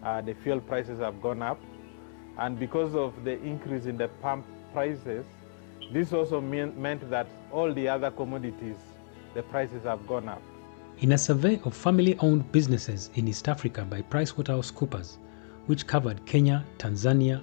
The fuel prices have gone up, and because of the increase in the pump prices, this also meant that all the other commodities, the prices have gone up. In a survey of family-owned businesses in East Africa by Pricewaterhousecoopers, which covered Kenya, Tanzania,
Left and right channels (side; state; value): right; silent; 58 dB below the other